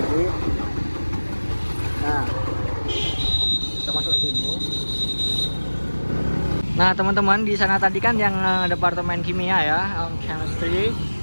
Nah, kita masuk ke sini. Nah, teman-teman, di sana tadi kan yang departemen kimia ya, chemistry.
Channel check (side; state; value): both; inverted; correlation -1.00